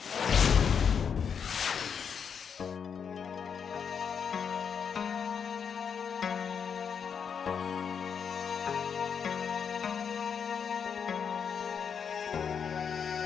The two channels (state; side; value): quieter; right; 7.0 dB